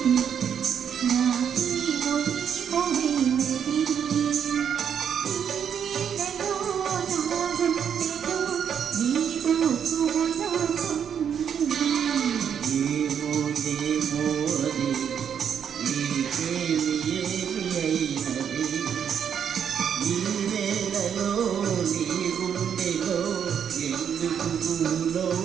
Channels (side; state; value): left; quieter; 8.1 dB